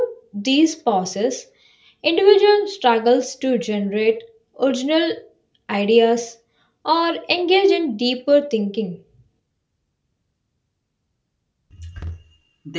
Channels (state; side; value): identical; both; correlation 1.00